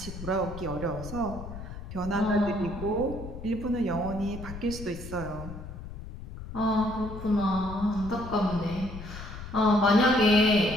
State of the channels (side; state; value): left; noise; rumble, 11 dB below the sound